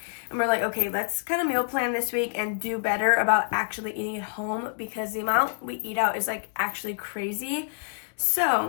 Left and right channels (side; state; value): right; silent; digital silence